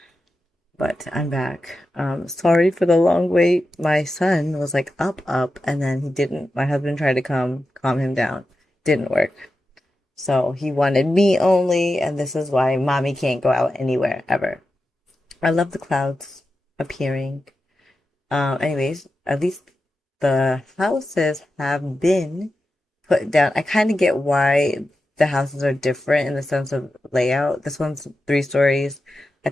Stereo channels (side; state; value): both; normal; correlation 0.91